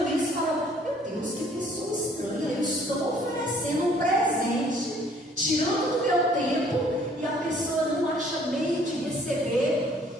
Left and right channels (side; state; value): both; normal; correlation 0.59